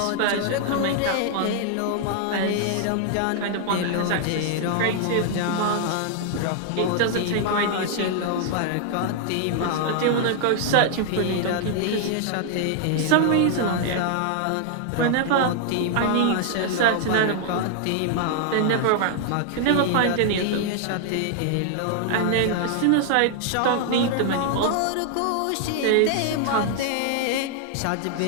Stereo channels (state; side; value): different; both; correlation -0.01